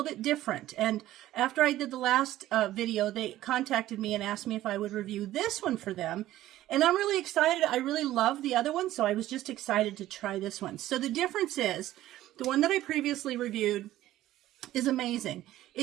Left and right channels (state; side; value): quieter; left; 14.5 dB